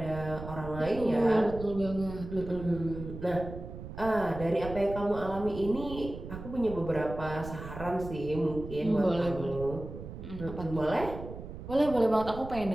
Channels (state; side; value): noise; right; rumble, 10 dB below the sound